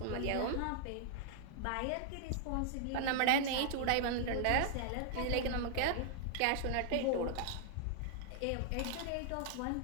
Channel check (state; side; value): different; both; correlation -0.01